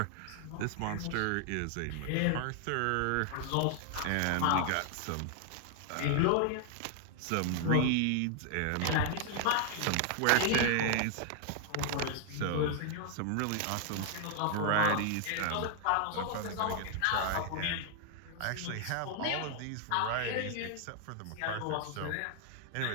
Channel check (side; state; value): both; different; correlation 0.00